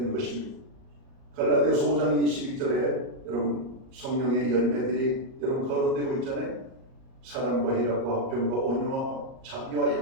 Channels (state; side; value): late; left; 38 ms